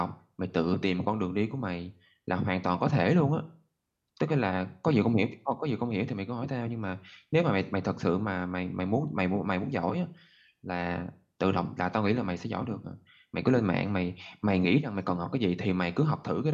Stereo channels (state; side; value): identical; both; correlation 1.00